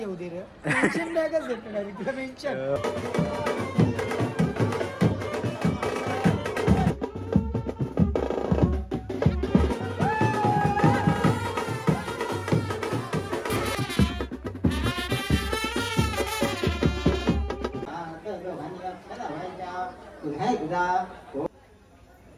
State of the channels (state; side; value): identical; both; correlation 1.00